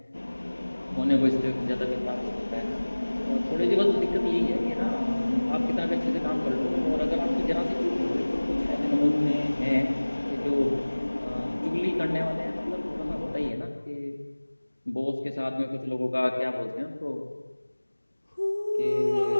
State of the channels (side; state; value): both; inverted; correlation -1.00